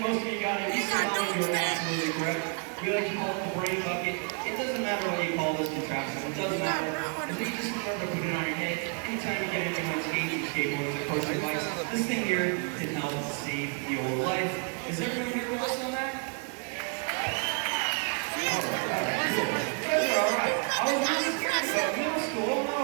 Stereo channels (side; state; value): left; quieter; 38.7 dB